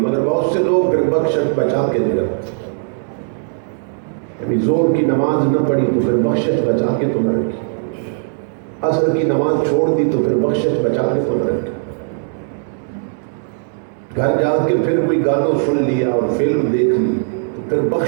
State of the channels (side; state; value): left; silent; 66 dB below the other